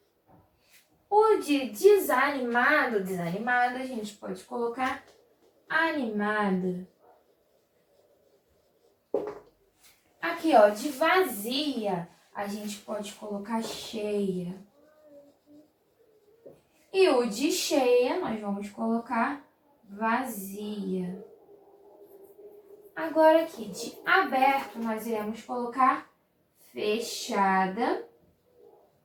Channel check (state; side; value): identical; both; correlation 1.00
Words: O de desanimado, desanimada, a gente pode colocar animada. Aqui, ó, de vazia, a gente pode colocar cheia. E o de cheia, nós vamos colocar vazia. Agora aqui, de aberto, nós iremos colocar fechada.